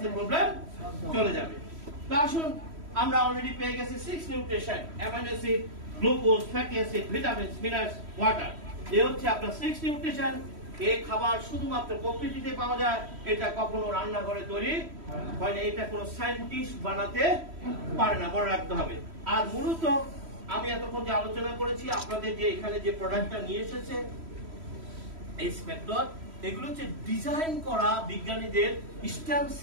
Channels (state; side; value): late; left; 3.1 ms